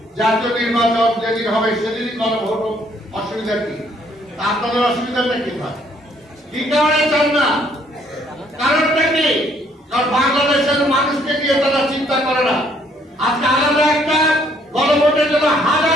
জাতীয় নির্বাচন যেদিন হবে সেদিনই গণভোট হোক, অসুবিধা কি? আপনাদের অসুবিধাটা কি হয়? কি কারণে চান না? কারণটা কি? কারণ বাংলাদেশের মানুষকে নিয়ে তারা চিন্তা করে না। আজকে আলাদা একটা গণভোটের জন্য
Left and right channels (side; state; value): both; normal; correlation 0.65